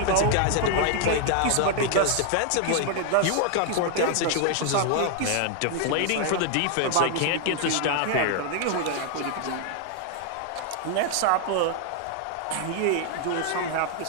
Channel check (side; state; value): both; different; correlation 0.00